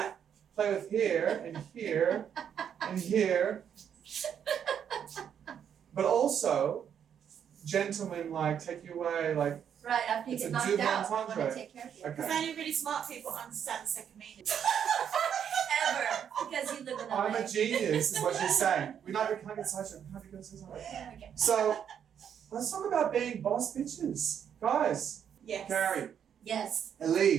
right. Play with here and here and here. But also, gentlemen like take you away like. Right, after you It's get a knocked double out, I want entendre. to take care of you. Okay. Because only really smart people understand the second meaning. Ever, because you live in LA. I'm a genius, is what she's saying. We can't get such a can't get such a. Okay. So, let's talk about being boss bitches, guys. Yes. Cary, Yes.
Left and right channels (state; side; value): quieter; left; 8.5 dB